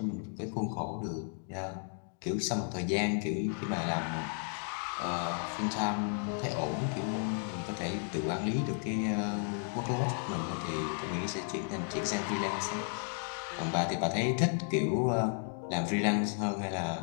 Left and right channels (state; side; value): silent; right; 55 dB below the other